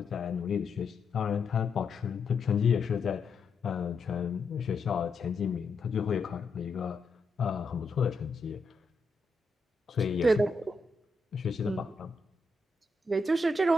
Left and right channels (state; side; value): quieter; right; 3.2 dB